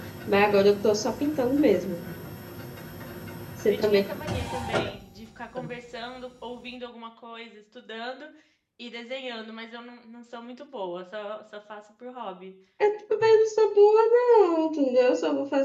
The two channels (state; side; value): identical; both; correlation 1.00